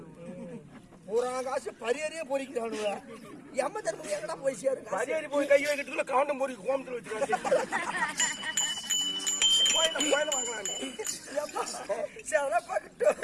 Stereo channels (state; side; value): identical; both; correlation 1.00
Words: பூரா காசு பரியறியே பொறிக்கிறானுங்க. எம்ம தர்மம் எங்கடா போய் சேரு? பரியறி போய் கை வைக்கிறதுக்குள்ள காண்டம் பொறிக்கு கோமத்துல வச்சுக்கிறாங்க.